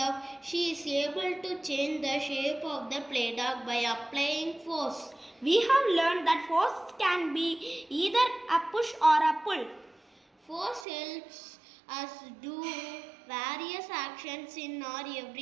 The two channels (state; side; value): drops out; left; at 10.9 s